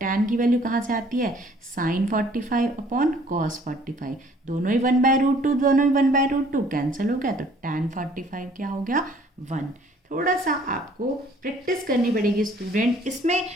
tan की वैल्यू कहाँ से आती है, साइन 45 अपॉन कॉस 45, दोनों ही 1/√2, दोनों ही 1/√2 कैंसिल हो गया, तो tan 45 क्या हो गया 1। थोड़ा सा आपको प्रैक्टिस करनी पड़ेगी स्टूडेंट। इसमें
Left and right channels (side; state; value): both; normal; correlation 0.57